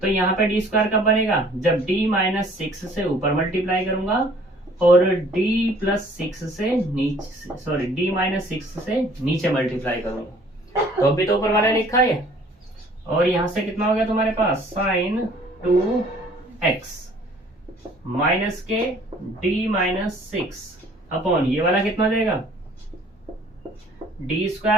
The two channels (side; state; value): both; normal; correlation 0.55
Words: तो यहाँ पे डी स्क्वायर कब बनेगा, जब डी माइनस 6 से ऊपर मल्टीप्लाई करूंगा और डी प्लस 6 से नीचे, सॉरी डी माइनस 6 से नीचे मल्टीप्लाई करूंगा। तो अभी तो ऊपर वाला लिखा है और यहां से कितना हो गया तुम्हारे पास साइन 2x माइनस के डी माइनस 6 अपॉन ये वाला कितना देगा डी